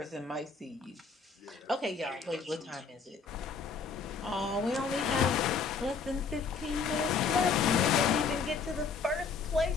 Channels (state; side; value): quieter; right; 5.1 dB